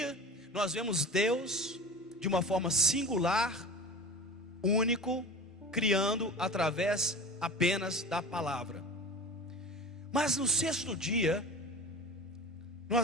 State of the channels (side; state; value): both; normal; correlation 0.35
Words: nós vemos Deus de uma forma singular, único, criando através apenas da palavra. Mas no 6º dia,